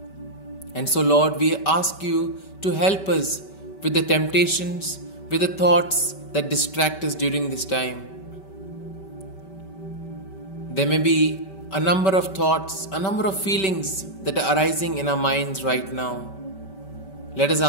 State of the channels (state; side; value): late; right; 5.2 ms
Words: And so, Lord, we ask you to help us with the temptations, with the thoughts that distract us during this time. There may be a number of thoughts, a number of feelings that are arising in our minds right now. Let us